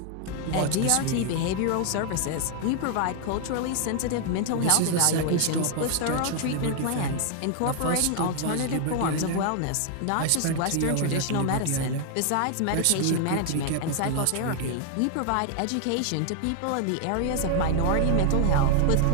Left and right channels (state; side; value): different; both; correlation 0.00